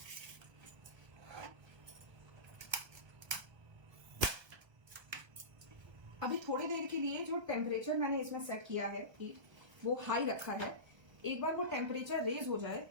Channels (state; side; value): late; left; 1.3 ms